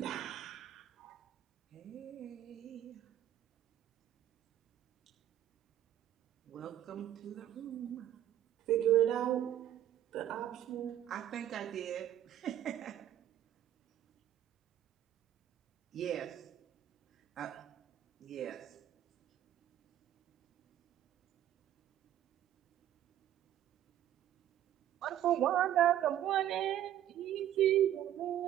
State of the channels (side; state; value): left; quieter; 11.6 dB